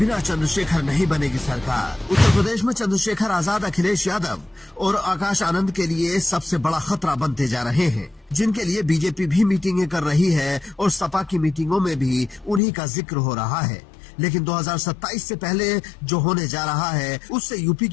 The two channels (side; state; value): right; drops out; at 12.6 s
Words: चंद्रशेखर नहीं बनेगी सरकार। उत्तर प्रदेश में चंद्रशेखर आजाद, अखिलेश यादव और आकाश आनंद के लिए सबसे बड़ा खतरा बनते जा रहे हैं, जिनके लिए बीजेपी भी मीटिंगें कर रही है और सपा की मीटिंगों में भी उन्हीं का जिक्र हो रहा है। लेकिन 2027 से पहले जो होने जा रहा है उससे यूपी